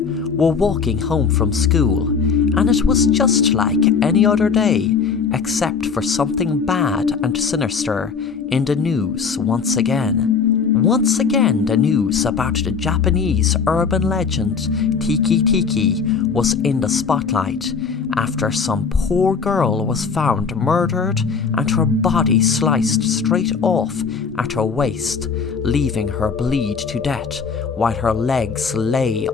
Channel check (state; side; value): quieter; right; 5.6 dB